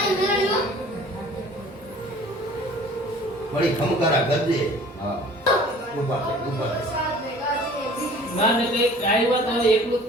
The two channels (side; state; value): both; normal; correlation 0.48